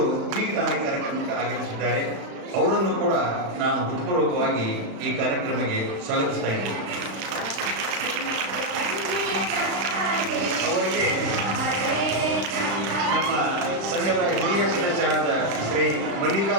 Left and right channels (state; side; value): late; left; 36 ms